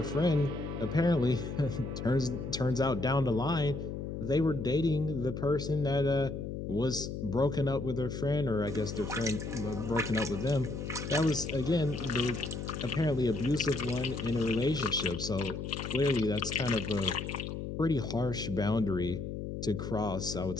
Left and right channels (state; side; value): noise; left; hum, 6 dB below the sound